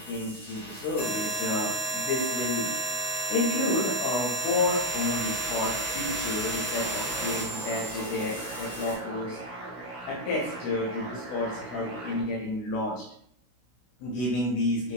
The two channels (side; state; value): right; late; 16 ms